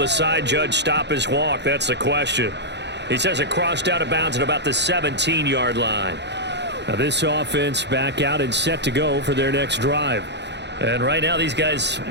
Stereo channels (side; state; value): left; late; 0.50 ms